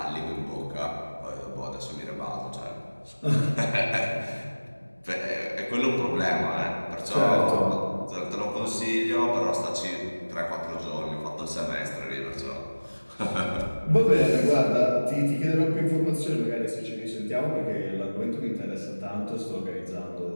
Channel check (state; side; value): inverted; both; correlation -1.00